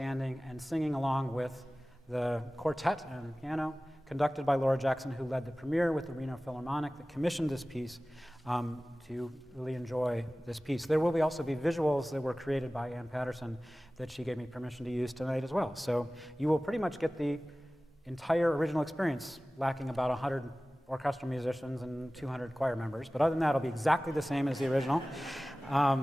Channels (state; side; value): normal; both; correlation 0.97